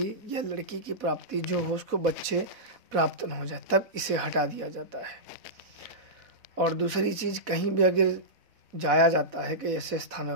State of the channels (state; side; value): late; left; 4.0 ms